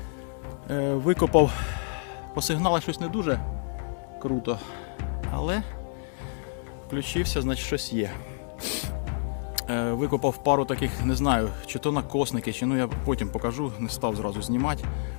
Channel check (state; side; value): silent; right; digital silence